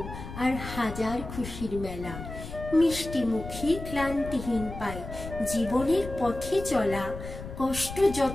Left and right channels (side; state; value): left; noise; rumble, 10 dB below the sound